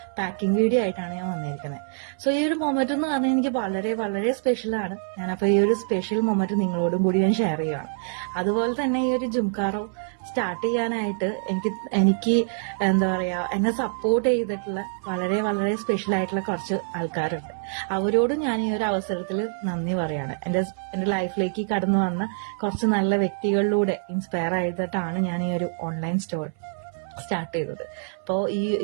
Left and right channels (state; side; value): silent; left; 61 dB below the other